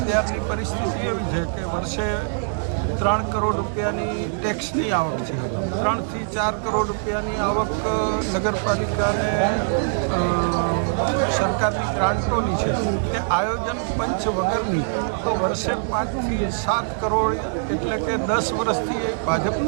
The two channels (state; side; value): silent; left; digital silence